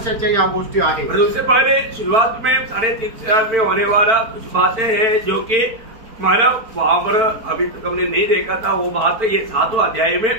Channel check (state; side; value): late; left; 4.4 ms